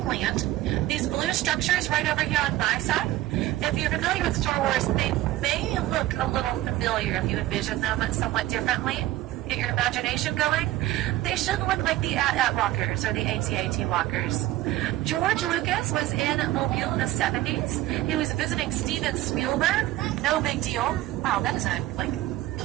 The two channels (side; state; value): left; quieter; 15.8 dB